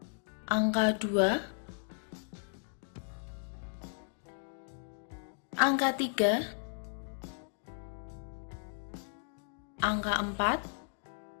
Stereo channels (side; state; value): right; silent; digital silence